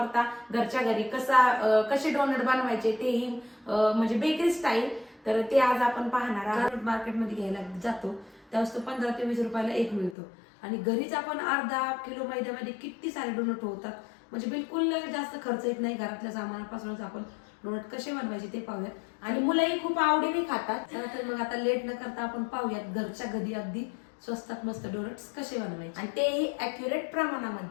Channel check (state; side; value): drops out; right; at 10.2 s